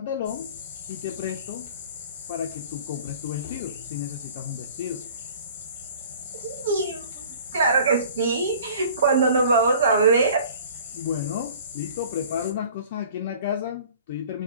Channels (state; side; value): inverted; both; correlation -0.47